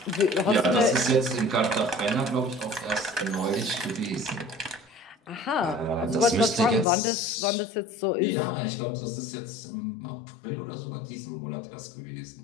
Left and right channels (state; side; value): drops out; right; at 6.9 s